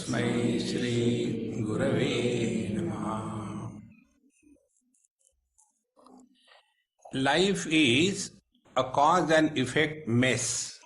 Shri Gurave Namaha. Life is a cause and effect mess.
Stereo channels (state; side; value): identical; both; correlation 1.00